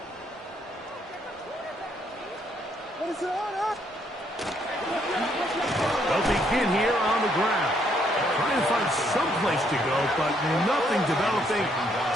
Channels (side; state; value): both; normal; correlation 0.70